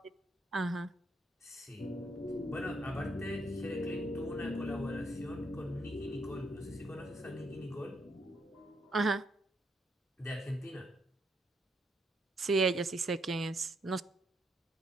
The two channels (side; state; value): both; normal; correlation 0.75